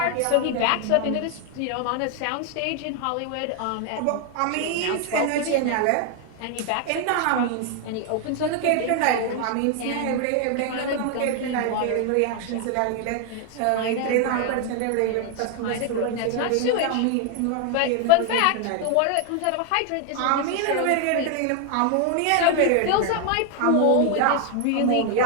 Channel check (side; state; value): both; different; correlation 0.00